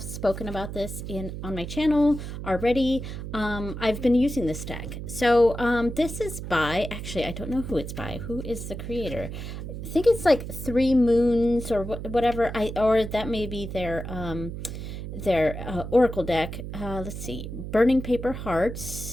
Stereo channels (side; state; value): right; noise; hum, 8 dB below the sound